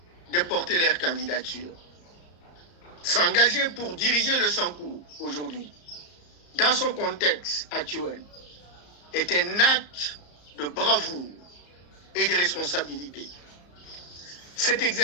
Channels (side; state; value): right; late; 34 ms